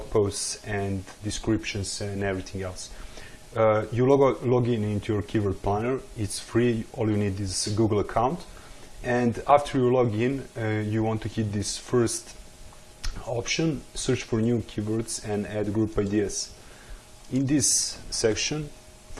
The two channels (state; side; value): identical; both; correlation 1.00